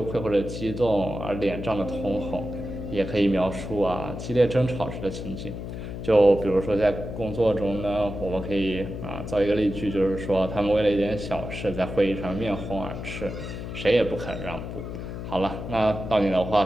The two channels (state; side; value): noise; left; hum, 7 dB below the sound